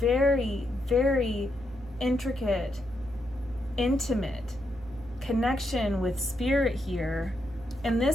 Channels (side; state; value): right; noise; hum, 19 dB below the sound